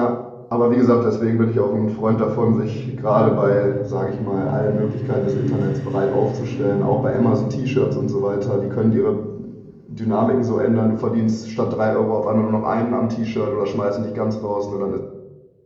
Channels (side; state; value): both; identical; correlation 1.00